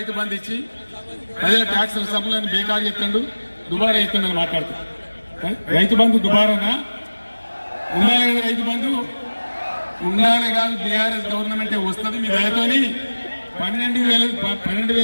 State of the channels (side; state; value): both; inverted; correlation -1.00